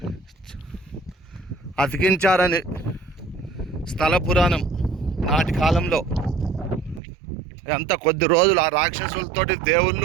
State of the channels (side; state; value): left; drops out; at 7.0 s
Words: అతికించారని స్థల పురాణం. నాటి కాలంలో అంత కొద్ది రోజులు ఆ రాక్షసులతోటి